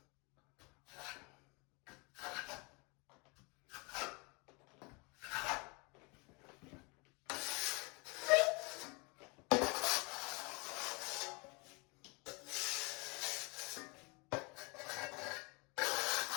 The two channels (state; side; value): quieter; right; 29.6 dB